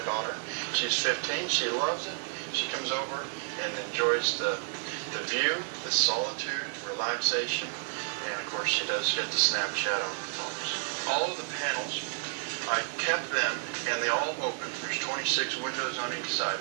daughter. She's 15. She loves it. She comes over and enjoys the view, the solitude, relaxation, and of course she does get the Snapchat on the phones. All of the panels, I kept them and they all open. There's 26 windows on each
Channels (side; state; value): left; silent; 57 dB below the other